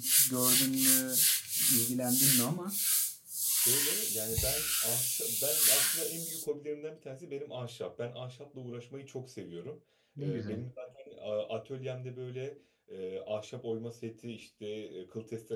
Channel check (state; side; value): identical; both; correlation 1.00